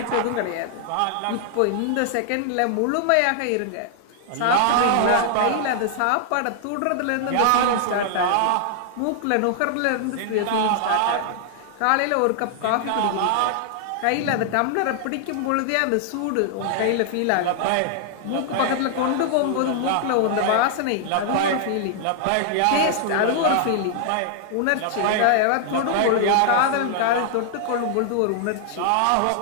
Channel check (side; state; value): both; different; correlation -0.01